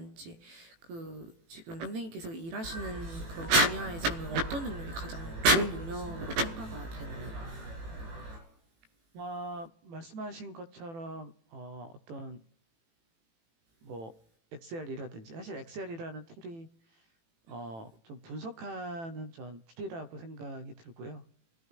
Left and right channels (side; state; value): left; late; 18 ms